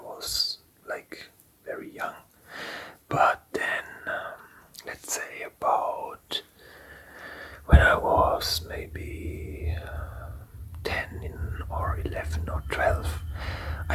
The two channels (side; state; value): both; identical; correlation 1.00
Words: was like very young. But then, let's say about when I was maybe 10 or 11 or 12,